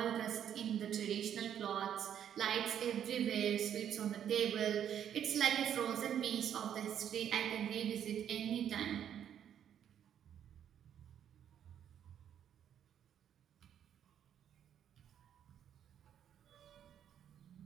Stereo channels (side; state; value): left; quieter; 9.5 dB